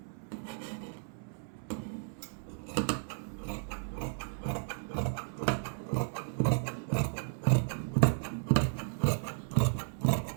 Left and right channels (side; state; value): left; silent; 55 dB below the other